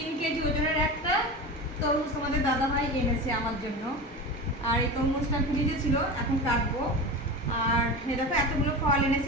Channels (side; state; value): both; normal; correlation 0.27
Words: কেজি ওজনের একটা তরমুজ তোমাদের দাদাভাই এনেছে আমার জন্য। আর এই তরমুজটা ফ্রিজে ছিল, এখন কাটবো। আর দেখো এতগুলো ফল